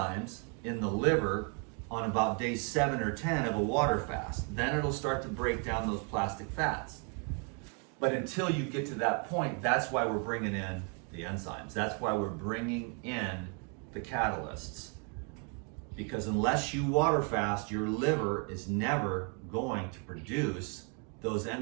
in the liver on about day 7 or 10 of a water fast. Then it'll start to break down those plastic fats. But until you get to that point, that's why we're bringing in the enzymes. That's why we're bringing in the catalysts. Because unless you water fast, your liver is never going to produce those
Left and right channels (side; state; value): left; quieter; 36.7 dB